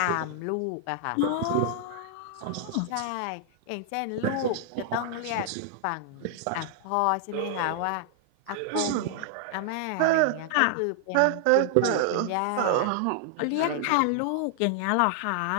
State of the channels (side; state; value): both; different; correlation 0.00